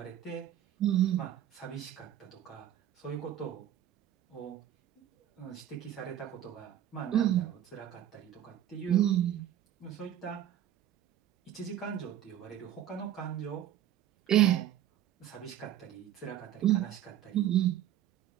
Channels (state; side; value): quieter; left; 11.5 dB